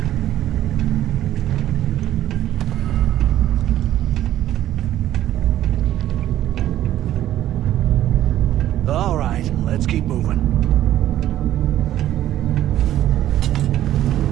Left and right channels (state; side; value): quieter; left; 12.7 dB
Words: All right, let's keep moving.